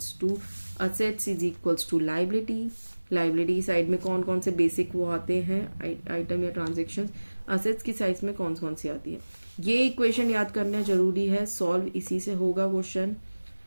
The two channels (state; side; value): inverted; both; correlation -1.00